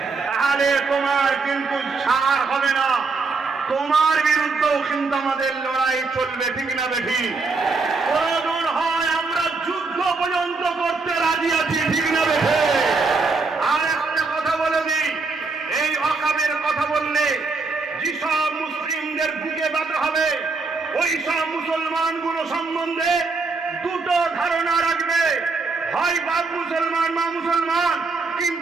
তাহলে তোমার কিন্তু ছাড় হবে না, তোমার বিরুদ্ধেও কিন্তু আমাদের লড়াই চলবে, ঠিক না বেঠি? প্রয়োজন হয় আমরা যুদ্ধ পর্যন্ত করতে রাজি আছি, ঠিক না বেঠি? আর একটা কথা বলে দিই, এই ওয়াকাবের কথা বললে যেসব মুসলিমদের বুকে ব্যথা হবে, ওই সব মুসলমানগুলো সম্বন্ধে দুটো ধারণা রাখবে, হয় বাপ মুসলমান মা মুসলমান,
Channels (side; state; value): left; quieter; 4.0 dB